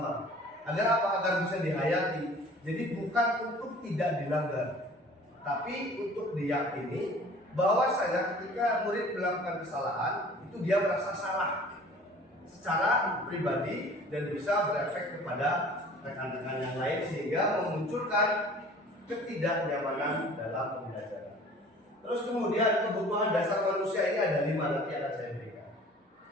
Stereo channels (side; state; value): both; normal; correlation 0.48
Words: Agar apa? Agar bisa dihayati. Jadi bukan untuk tidak dilanggar, tapi untuk diyakini bahwasanya ketika murid melakukan kesalahan itu dia merasa salah secara pribadi dan bisa berefek kepada rekan-rekan yang lain sehingga memunculkan ketidaknyamanan dalam pembelajaran. Terus kemudian kebutuhan dasar manusia ini ada 5, nanti akan saya berikan.